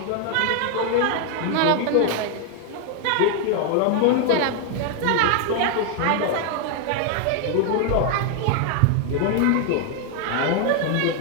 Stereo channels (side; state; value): both; different; correlation 0.00